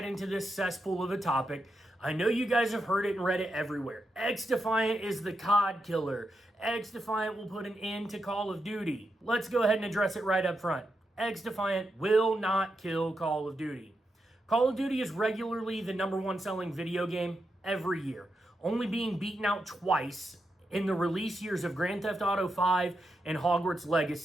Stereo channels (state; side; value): normal; both; correlation 0.85